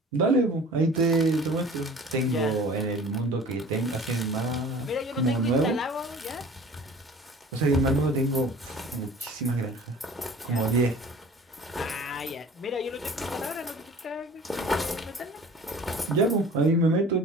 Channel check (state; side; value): normal; both; correlation 0.45